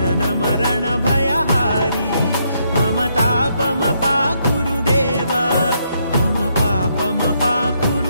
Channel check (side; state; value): both; inverted; correlation -0.75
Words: मरण भयहारी मम तापमपाकुरु देव मम